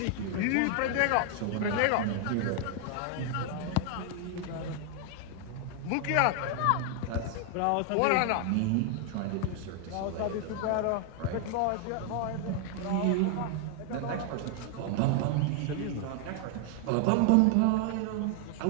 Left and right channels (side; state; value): both; different; correlation 0.00